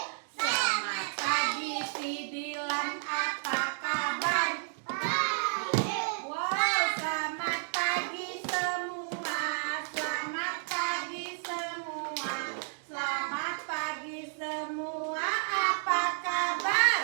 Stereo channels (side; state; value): left; silent; digital silence